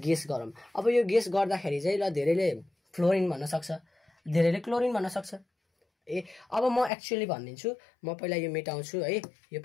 गरौँ। अब यो गेस गर्दाखेरि चाहिँ ल धेरैले फ्लोरिन भन्न सक्छ, धेरैले क्लोरिन भन्न सक्छ। अब म एक्चुअली भनिदिन्छु। म पहिला यो मेटाउँछु है। यो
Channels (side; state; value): right; drops out; at 6.9 s